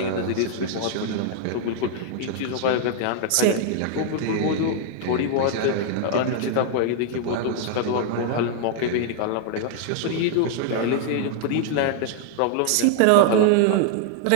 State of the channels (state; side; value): different; both; correlation 0.00